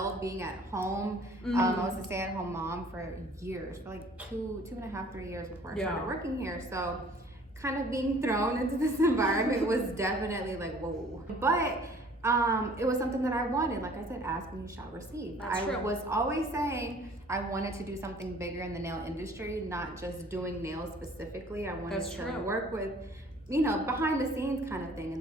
being at home. I was a stay-at-home mom for years, for like two and a half, 3 years before I started working here. So kind of being thrown into this environment was definitely like, whoa. But it was something that I wanted. Like I said, ask and you shall receive. That's true. I was always saying I wanted to do something bigger in the nail industry, not just doing nails specifically. I wanted to work with, you know, behind the scenes kind of thing. And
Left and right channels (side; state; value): both; normal; correlation 0.53